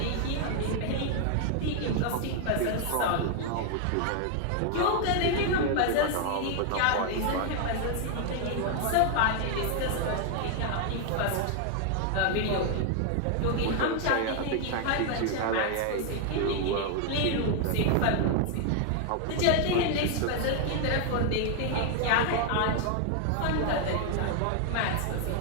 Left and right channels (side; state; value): both; different; correlation 0.00